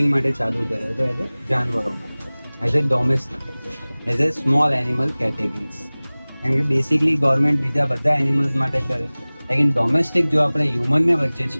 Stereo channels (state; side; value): inverted; both; correlation -1.00